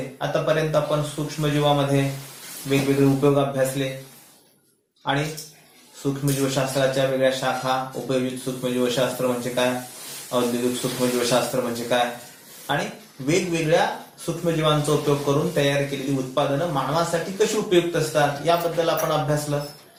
आतापर्यंत आपण सूक्ष्मजीवामध्ये वेगवेगळे उपयोग अभ्यासले आणि सूक्ष्मजीवशास्त्राच्या वेगळ्या शाखा, उपयोजित सूक्ष्मजीवशास्त्र म्हणजे काय, औद्योगिक सूक्ष्मजीवशास्त्र म्हणजे काय आणि वेगवेगळ्या सूक्ष्मजीवांचा उपयोग करून तयार केलेली उत्पादनं मानवासाठी कशी उपयुक्त असतात याबद्दल आपण अभ्यासलं.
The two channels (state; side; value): identical; both; correlation 1.00